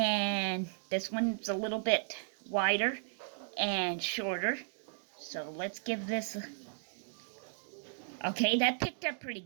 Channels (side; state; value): left; silent; digital silence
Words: this one's a little bit wider and shorter. So let's give this a... Okay, that picked up pretty